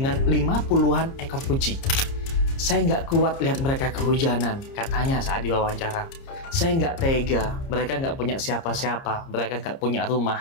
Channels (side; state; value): right; late; 30 ms